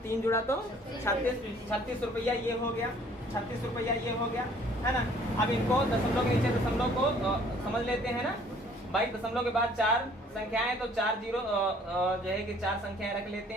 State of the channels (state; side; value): normal; both; correlation 0.57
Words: 3 जुड़ा तो 36 रुपया ये हो गया, 36 रुपया ये हो गया, है ना। अब इनको दशमलव के नीचे दशमलव को समझ लेते हैं ना भाई। दशमलव के बाद 4 संख्याएं तो 4 0 जो है कि 4 संख्याएं रख लेते